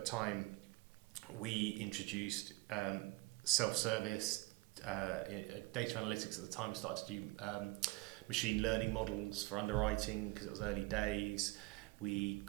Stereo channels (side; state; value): left; quieter; 21.8 dB